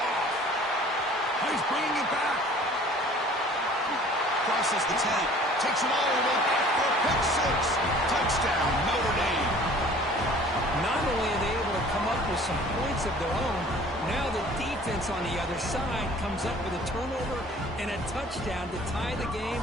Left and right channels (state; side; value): normal; both; correlation 0.50